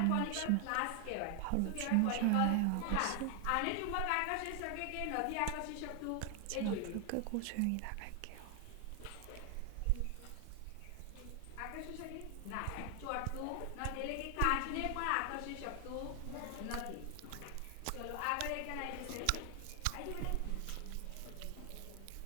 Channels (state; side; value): different; both; correlation 0.00